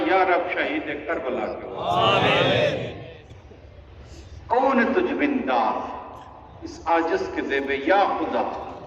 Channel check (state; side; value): identical; both; correlation 1.00